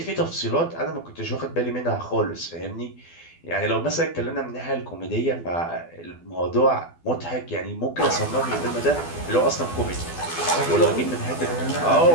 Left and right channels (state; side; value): late; right; 12 ms